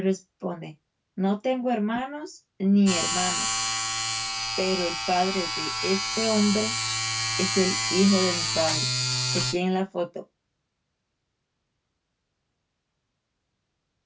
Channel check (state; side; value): identical; both; correlation 1.00